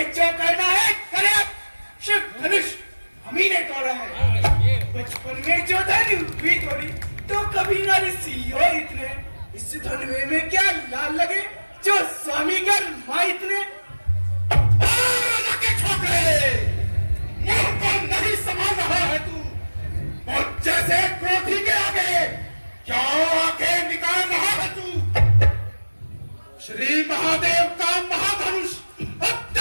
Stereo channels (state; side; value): inverted; both; correlation -1.00